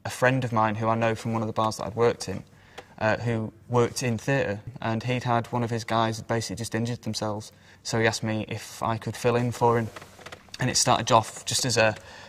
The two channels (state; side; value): identical; both; correlation 1.00